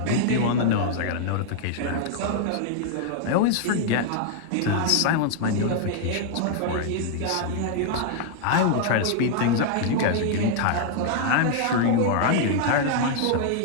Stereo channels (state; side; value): different; both; correlation -0.01